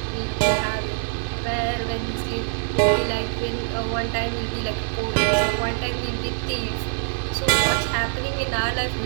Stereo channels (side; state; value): left; silent; 63 dB below the other